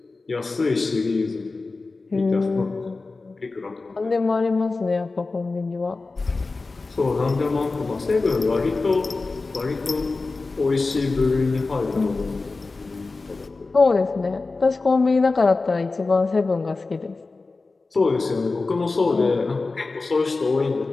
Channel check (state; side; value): quieter; right; 3.7 dB